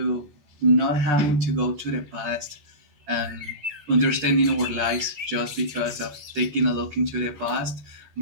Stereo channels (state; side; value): late; left; 14 ms